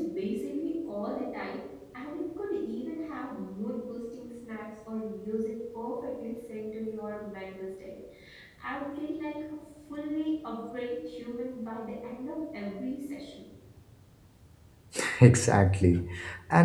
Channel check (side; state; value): both; identical; correlation 1.00